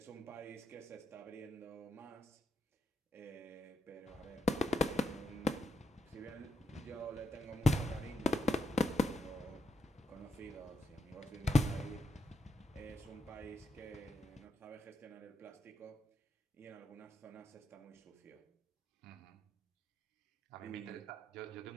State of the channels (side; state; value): both; normal; correlation 0.82